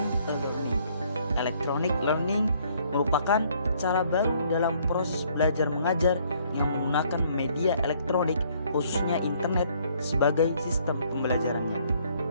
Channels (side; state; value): both; inverted; correlation -0.64